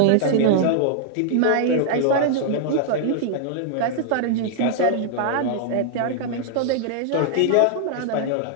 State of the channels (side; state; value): both; different; correlation -0.01